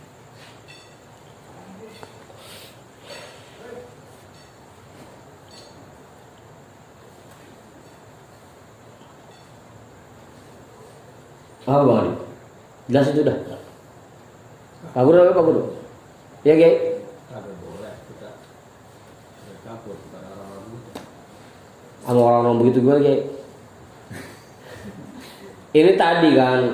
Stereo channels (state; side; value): identical; both; correlation 1.00